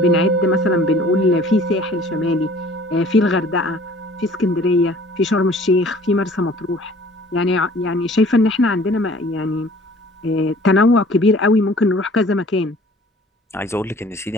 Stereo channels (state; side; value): normal; both; correlation 0.51